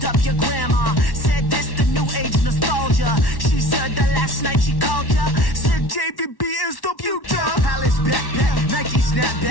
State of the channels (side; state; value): right; late; 1.1 ms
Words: up your grandma. Said this the new age nostalgia. She said that last night she called ya. Said JVB is the future. Palace backpack, Nike